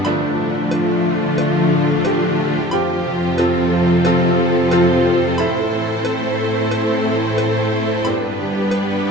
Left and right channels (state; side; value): normal; both; correlation 0.47